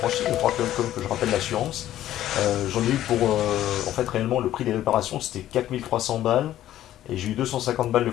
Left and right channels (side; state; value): right; quieter; 12.9 dB